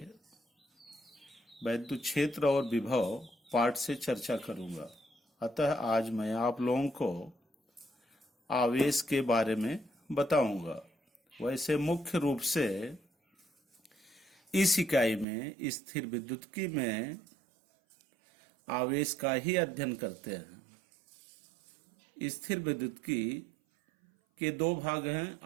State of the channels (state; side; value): drops out; left; at 15.2 s